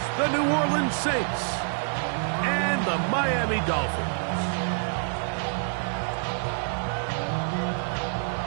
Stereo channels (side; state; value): left; silent; 60 dB below the other